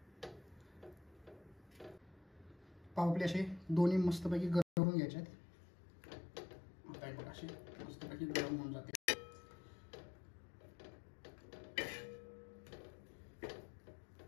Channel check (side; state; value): right; drops out; at 4.7 s